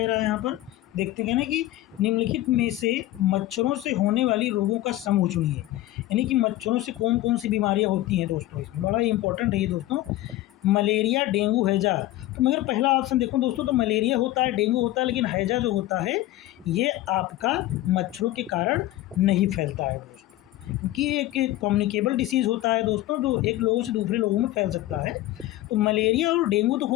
रहा है यहाँ पर? देखते हैं ना कि निम्नलिखित में से मच्छरों से होने वाली रोगों का समूह चुनिए, यानी कि मच्छरों से कौन कौन सी बीमारियां होती हैं दोस्तों। इसमें बड़ा ही इंपॉर्टेंट है ये दोस्तों, मलेरिया, डेंगू, हैजा। तो मगर पहला ऑप्शन देखो दोस्तों, तो मलेरिया होता है, डेंगू होता है, लेकिन हैजा जो होता है ये आपका मच्छरों के कारण नहीं फैलता है दोस्तों, क्योंकि एक कम्युनिकेबल डिसीज़ होता है दोस्तों, जो एक लोगों से दूसरे लोगों में फैल सकता है। तो मलेरिया और डेंगू तो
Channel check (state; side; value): quieter; right; 15.6 dB